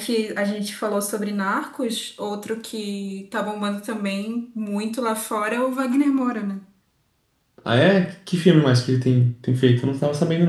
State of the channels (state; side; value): identical; both; correlation 1.00